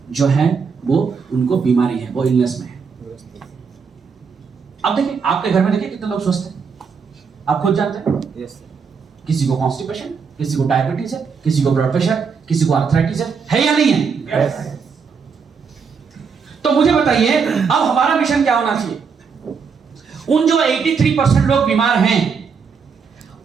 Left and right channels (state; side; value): quieter; left; 5.8 dB